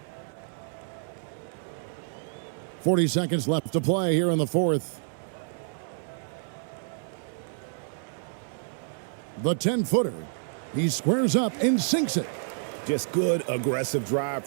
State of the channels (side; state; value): left; silent; 57 dB below the other